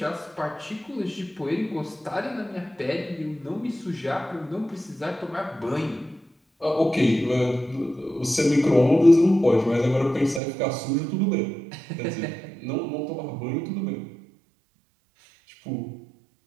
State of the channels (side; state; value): left; drops out; at 10.4 s